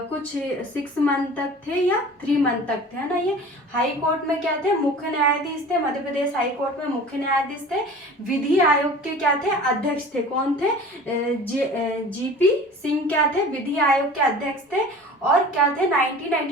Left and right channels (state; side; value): normal; both; correlation 0.41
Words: 6 मंथ तक थे या 3 मंथ तक थे, है ना। ये हाई कोर्ट में क्या थे, मुख्य न्यायाधीश थे। मध्य प्रदेश हाई कोर्ट में मुख्य न्यायाधीश थे। विधि आयोग के क्या थे, अध्यक्ष थे। कौन थे, जीपी सिंह क्या थे, विधि आयोग के अध्यक्ष थे। और क्या थे,